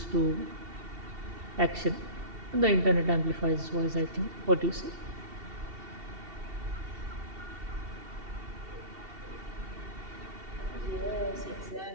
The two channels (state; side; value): late; left; 2.7 ms